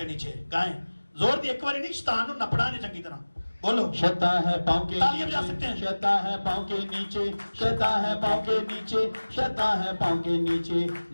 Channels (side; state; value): both; inverted; correlation -1.00